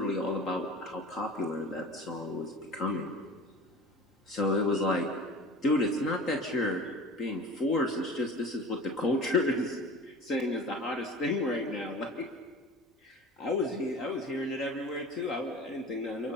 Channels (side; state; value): both; normal; correlation 0.38